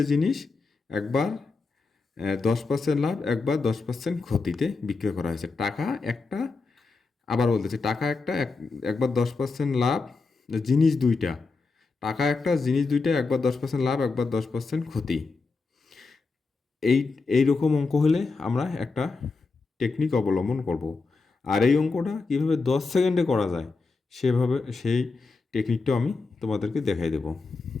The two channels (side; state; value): right; quieter; 4.1 dB